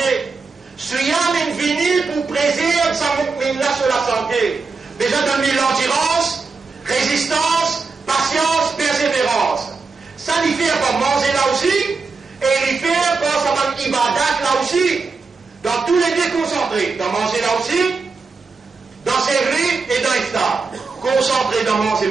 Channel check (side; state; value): left; quieter; 4.5 dB